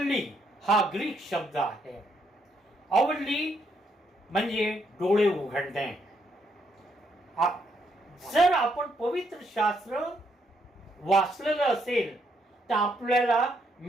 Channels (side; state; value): both; normal; correlation 0.75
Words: हा ग्रीक शब्द आहे. अवल्ली म्हणजे डोळे उघडणे. जर आपण पवित्र शास्त्र वाचलेलं असेल तर आपल्याला